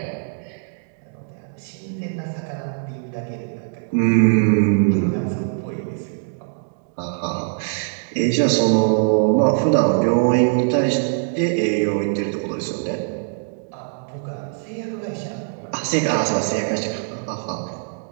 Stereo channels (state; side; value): silent; left; digital silence